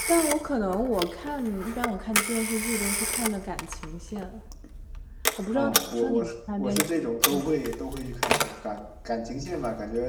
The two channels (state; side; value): identical; both; correlation 1.00